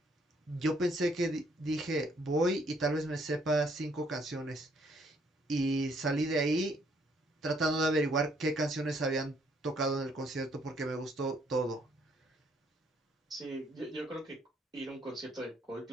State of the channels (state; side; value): normal; both; correlation 0.67